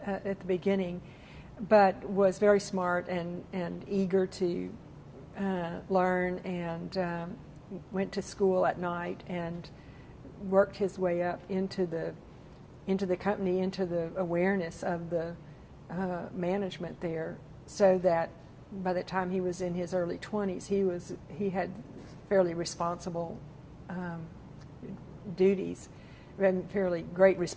the beginning, but was very smart and eager to learn, and went to school at night and worked his way up into the company, into the awareness of the management there, so that by the time he was in his early 20s, he had fairly responsible duties, and fairly great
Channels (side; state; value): both; identical; correlation 1.00